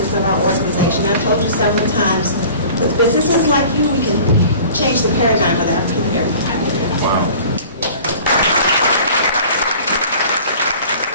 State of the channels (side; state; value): both; inverted; correlation -0.45